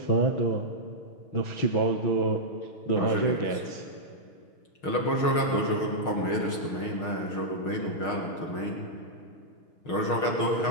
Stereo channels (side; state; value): right; late; 6.4 ms